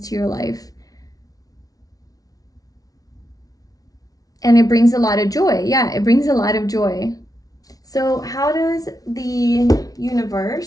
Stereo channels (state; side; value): late; right; 0.18 ms